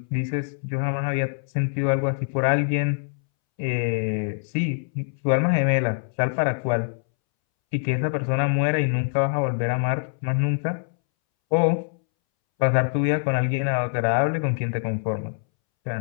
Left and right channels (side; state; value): right; silent; 62 dB below the other